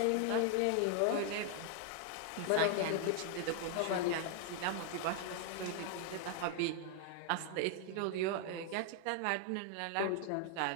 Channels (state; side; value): different; both; correlation 0.00